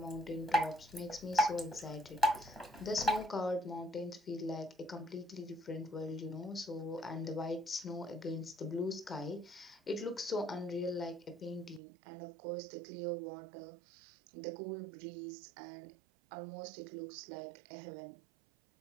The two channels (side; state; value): left; drops out; at 11.8 s